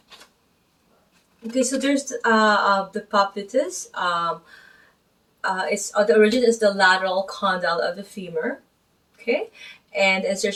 Okay, so there's the poplites. It's the origin is the lateral condyle of the femur. Okay, and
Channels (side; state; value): both; identical; correlation 1.00